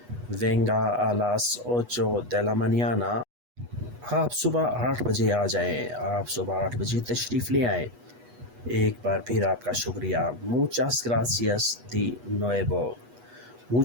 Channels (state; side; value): late; left; 8.2 ms